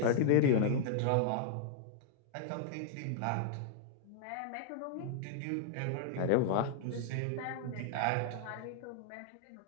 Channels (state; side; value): different; both; correlation -0.01